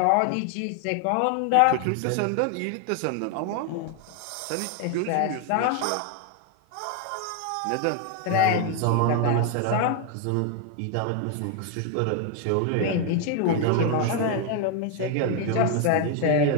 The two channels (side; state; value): both; different; correlation 0.00